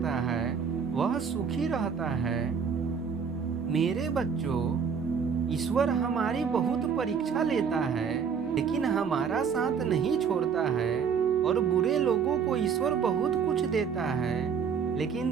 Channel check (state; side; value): quieter; left; 6.5 dB